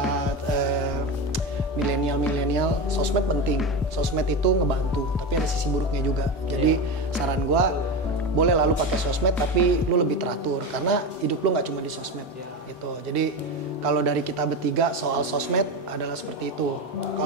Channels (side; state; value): both; normal; correlation 0.20